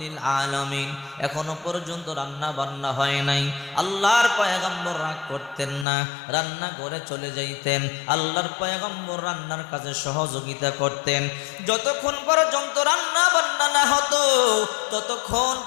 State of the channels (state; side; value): drops out; right; at 5.9 s